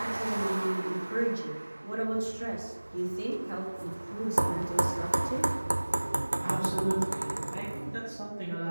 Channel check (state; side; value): inverted; both; correlation -1.00